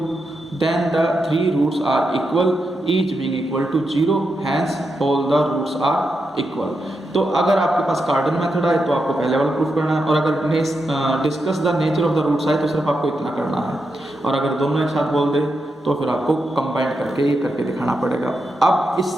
then the 3 roots are equal each being equal to 0 hence all the roots are equal. तो अगर आपके पास कार्डन method आए तो आपको पहले वाला proof करना है, और अगर discuss the nature of the roots आए तो सिर्फ आपको इतना करना है, और अगर दोनों एक साथ बोल दे तो फिर आपको कंबाइन करके ये करके दिखाना पड़ेगा। अब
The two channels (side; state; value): both; normal; correlation 0.86